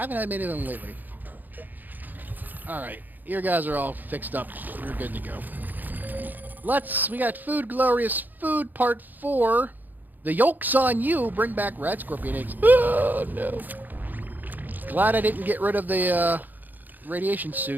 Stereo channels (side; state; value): left; late; 0.086 ms